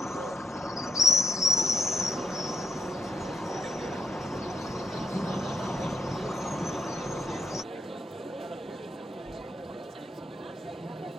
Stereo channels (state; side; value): normal; both; correlation 0.77